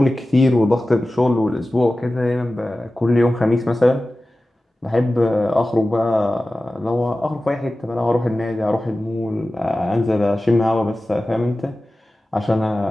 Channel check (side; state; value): both; normal; correlation 0.96